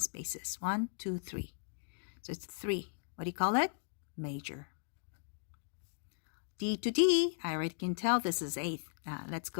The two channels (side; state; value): right; silent; digital silence